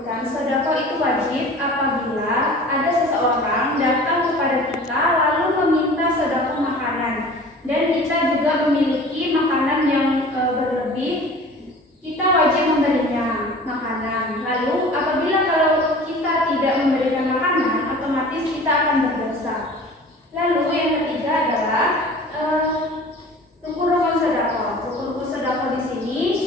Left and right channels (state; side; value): normal; both; correlation 0.43